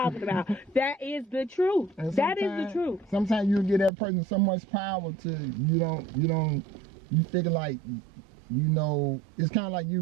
about. That is the truth. That is the truth. Sometimes you give that person so much power to you figure like, it's kind of like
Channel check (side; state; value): left; drops out; at 3.9 s